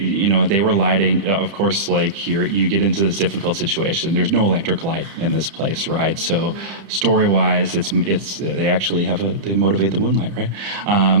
were lighting. Of course, here you get into this difficult situation. There's no electric light in this place, right? So story-wise, it's they actually they motivate the moonlight, right?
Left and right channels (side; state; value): left; late; 30 ms